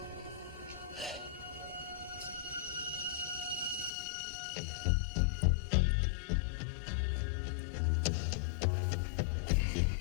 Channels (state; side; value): drops out; right; at 3.9 s